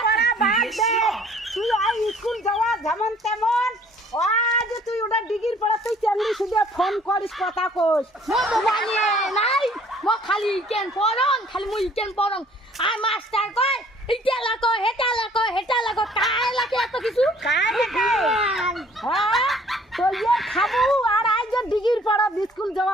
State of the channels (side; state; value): both; normal; correlation 0.56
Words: পড়া বাদ দে তুই আই স্কুল যাওয়া যেমন তেমন আজ তুই ওটা ডিগ্রি পড়া তুই চাকরি শুধু ফোন করিস কথা কইস মো মোবাইল নাই মো খালি কেন পড়ন খালি মুই কেন পড়ন আর মাস্টার কয় ইটা লাগো হেটা লাগো কায় লাগে এত কিছু কায় লাগে হ্যাঁ তো ইয়ে খাবো আর আজ ডিগ্রি পড়া স্কুল যাওয়া